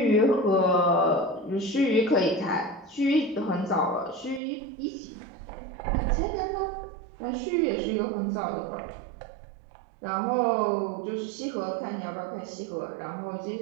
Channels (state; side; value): drops out; left; at 4.4 s